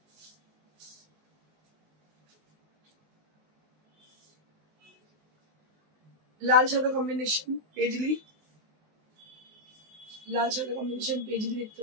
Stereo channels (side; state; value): left; late; 19 ms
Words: লাল সাদা কম্বিনেশন পেজলি, লাল সাদা কম্বিনেশন পেজলি দেখতে